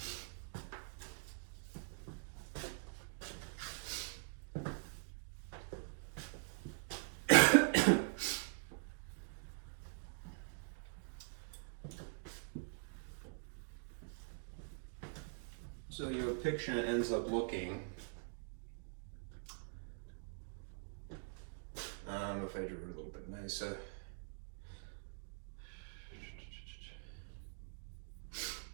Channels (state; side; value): silent; left; digital silence